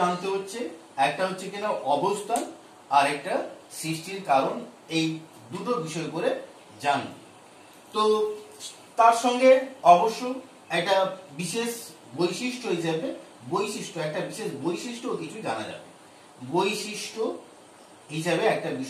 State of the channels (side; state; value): both; identical; correlation 1.00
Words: জানতে হচ্ছে, একটা হচ্ছে কিনা অবস্থান আর একটা সৃষ্টির কারণ। এই দুটো বিষয় করে জানবে। তো তার সঙ্গে অবশ্য একটা বিশেষ বৈশিষ্ট্য হিসেবে একটা বিশেষ বৈশিষ্ট্য কিছু জানা যাবে। বৈশিষ্ট্য হিসাবে একটা